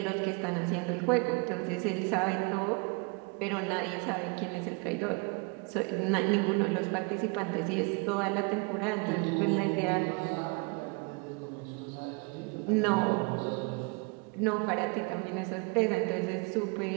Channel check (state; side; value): quieter; left; 31.2 dB